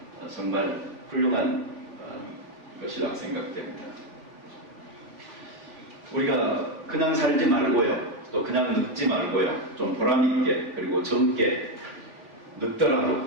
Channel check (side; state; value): left; late; 3.5 ms